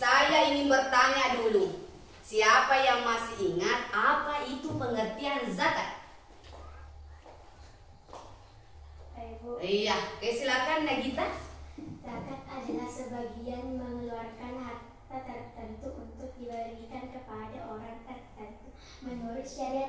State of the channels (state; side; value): identical; both; correlation 1.00